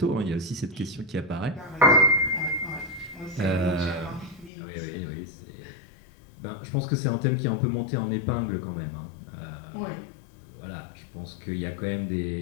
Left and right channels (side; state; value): right; drops out; at 4.5 s